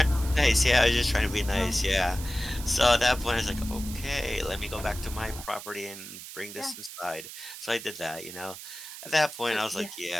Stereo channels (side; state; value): right; noise; hiss, 12 dB below the sound